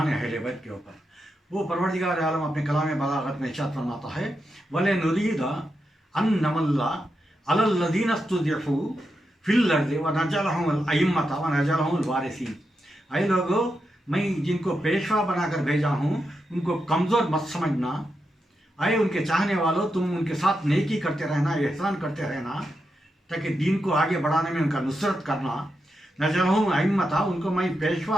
अहले बैत के ऊपर। वो परवरदिगार आलम अपने कलाम बलागत में इरशाद फरमाता है, वले नुरीदा अन नमल्ला अलल लदीन इस्तुज़िफ़ू फिल अर्ज़ि व नजअलहुमुल अइम्मता व नजअलहुमुल वारिसीन। ऐ लोगों, मैं जिनको पेशवा बनाकर भेजा हूँ उनको कमज़ोर मत समझना। ऐ उनके चाहने वालों, तुम उनके साथ नेकी करते रहना, एहसान करते रहना, ताकि दीन को आगे बढ़ाने में उनका नुसरत करना। नजअलहुमुल अइम्मता, उनको मैं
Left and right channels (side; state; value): both; normal; correlation 0.86